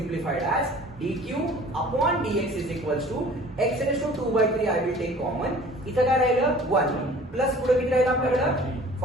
as dq/dx is equal to x⁻²/3. I will take common, इथं काय राहिलं? 1 प्लस पुढे किती राहिलं आपल्याकडे?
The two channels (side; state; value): both; normal; correlation 0.48